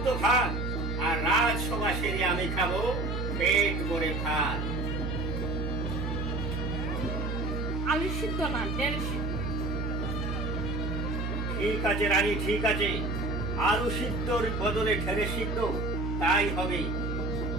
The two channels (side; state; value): right; noise; hum, 2 dB below the sound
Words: ভাত, আর রাজসভা সেরে আমি খাবো পেট ভরে ভাত। আলু সিদ্ধ না, ঢেঁড়স সিদ্ধ। ঠিক আছে রানী, ঠিক আছে, আলু সিদ্ধর বদলে ঢেঁড়স সিদ্ধ তাই হবে,